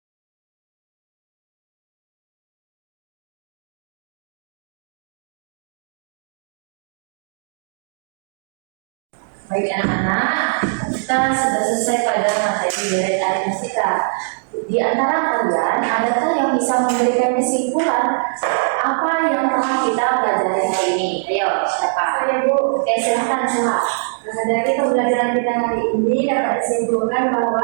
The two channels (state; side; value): silent; left; digital silence